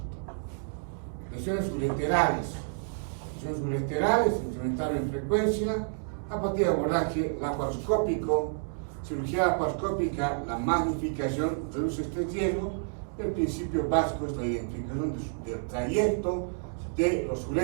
Lesiones ureterales. Lesiones ureterales se incrementaron en frecuencia a partir de abordaje laparoscópico. Cirugía laparoscópica, la magnificación reduce este riesgo. El principio básico es la identificación del trayecto de los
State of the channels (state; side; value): silent; left; digital silence